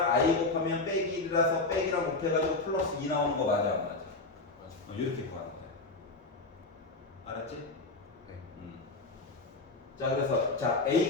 i 곱하면 빼기 1이라서 빼기랑 곱해가지고 플러스 2 나오는 거 맞아 안 맞아? 맞아. 이렇게 구하는 거야. 알았지? 네. 자, 그래서 자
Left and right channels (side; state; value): right; quieter; 3.3 dB